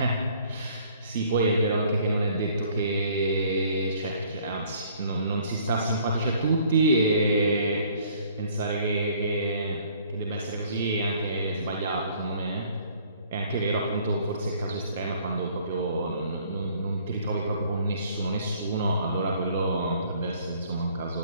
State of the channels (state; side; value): inverted; both; correlation -0.59